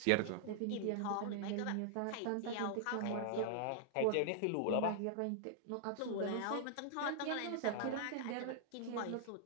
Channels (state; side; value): different; both; correlation -0.01